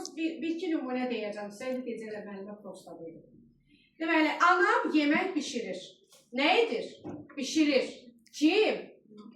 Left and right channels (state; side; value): identical; both; correlation 1.00